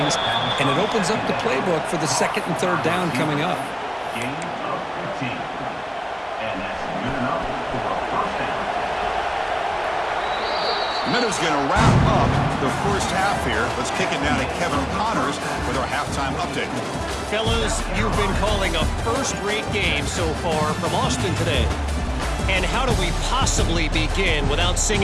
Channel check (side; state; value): both; identical; correlation 1.00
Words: and it opens up the playbook for the 2nd and 3rd down coming up. Gain of 15. And that's good enough for a 1st down. Meadows going to wrap up the 1st half here. Let's kick it now to Kevin Connors with our halftime update. Fellas, you've been calling a first-rate game so far from Austin today. And how do we possibly begin without